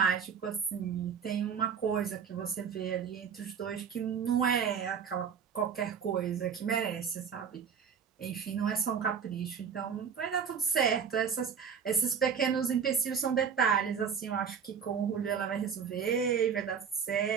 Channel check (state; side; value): quieter; left; 6.9 dB